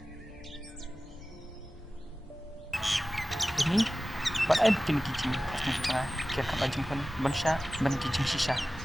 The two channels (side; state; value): both; normal; correlation 0.96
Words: Ini, ba't ay bikin kijing? Pas nang cara kaya kabajing pun, ban siya, ban kijing sisa.